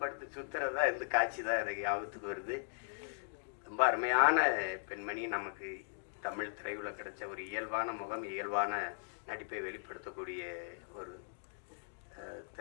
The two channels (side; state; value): right; silent; digital silence